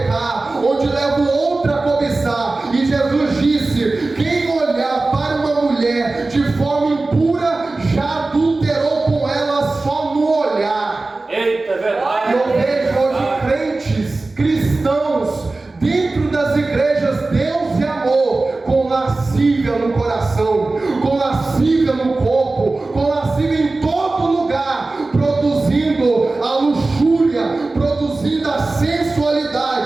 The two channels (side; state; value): left; quieter; 3.3 dB